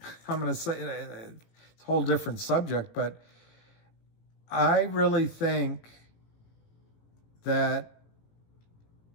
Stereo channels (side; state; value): right; late; 18 ms